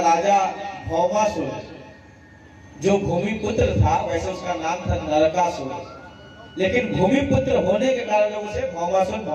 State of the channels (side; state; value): both; identical; correlation 1.00